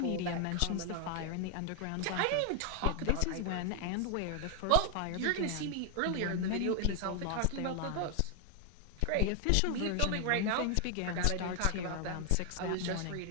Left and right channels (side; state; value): both; different; correlation 0.00